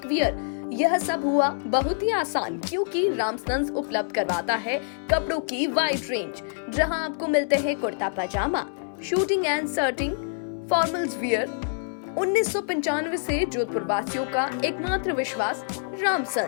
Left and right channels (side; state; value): right; silent; 61 dB below the other